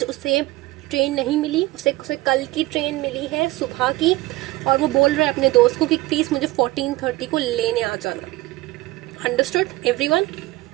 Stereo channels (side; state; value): left; quieter; 19.1 dB